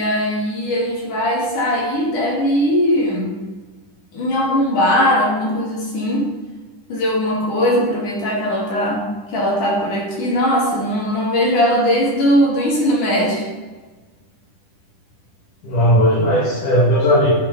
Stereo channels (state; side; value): late; right; 10 ms